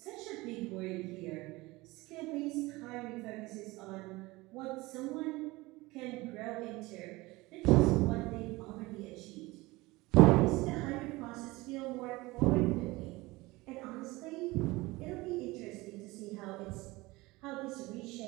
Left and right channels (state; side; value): quieter; left; 21.4 dB